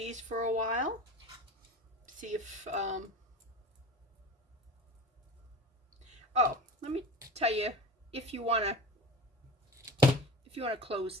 for a while. See if, oh, let me tell you, if you want to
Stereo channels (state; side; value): normal; both; correlation 0.34